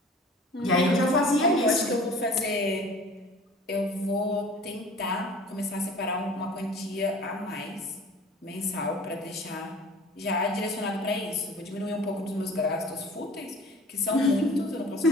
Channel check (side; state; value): both; normal; correlation 0.45